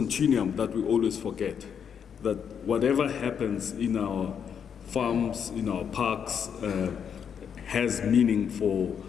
that we always forget, that whatever happens in our farms, in our parks, has meaning for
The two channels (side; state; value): right; quieter; 7.6 dB